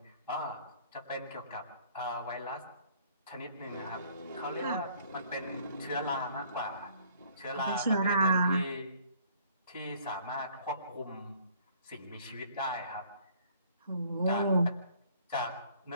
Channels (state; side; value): inverted; both; correlation -0.59